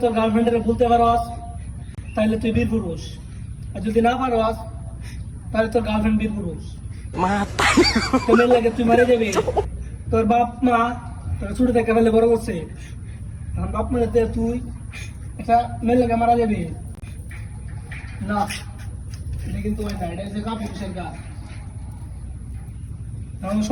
তোর গার্লফ্রেন্ডের ভুলতে পারস তাহলে তুই বীর পুরুষ, আর যদি না পারস তাহলে তোর গার্লফ্রেন্ড বীর পুরুষ। তোর লাগে তুই মারে যাবি। তোর বাপ মা তোর ছোট থেকে ফেলে বড় করছে, আমার বাপ মারে তুই একটা মেয়ের লাগে মারা যাবি না। এটা কিন্তু ওই না, এটা হচ্ছে কাপুরুষের কাজ। এখন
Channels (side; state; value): both; identical; correlation 1.00